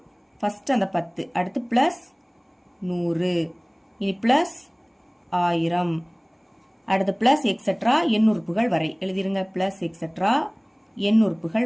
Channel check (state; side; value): identical; both; correlation 1.00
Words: ஃபர்ஸ்ட் அந்த 10, அடுத்து பிளஸ் 100, இனி பிளஸ் 1000, அடுத்து பிளஸ் எக்ஸெட்ரா எண் உறுப்புகள் வரை எழுதிருங்க. பிளஸ் எக்ஸெட்ரா எண் உறுப்புகள்